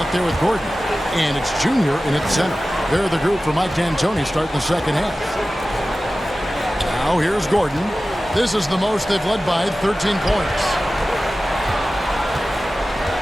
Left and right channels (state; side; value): normal; both; correlation 0.96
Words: there with Gordon. And it's Junior in its center. They're the group for Mike D'Antoni starting the second half. Now here's Gordon. This is the most they've led by, 13 points.